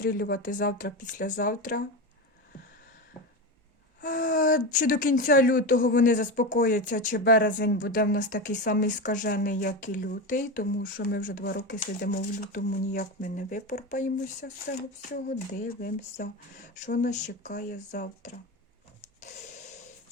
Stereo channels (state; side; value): normal; both; correlation 0.19